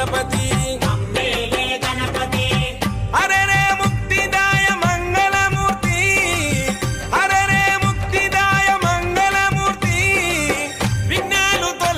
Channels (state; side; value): identical; both; correlation 1.00